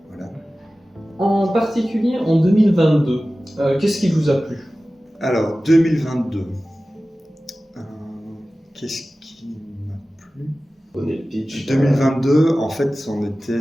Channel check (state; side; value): normal; both; correlation 0.96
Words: voilà. En particulier en 2022, qu'est-ce qui vous a plu? Alors 2022, qu'est-ce qui m'a plu? 2022, en fait, on était,